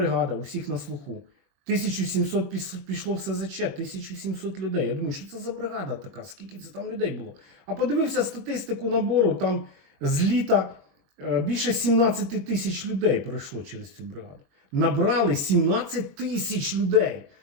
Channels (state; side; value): late; left; 21 ms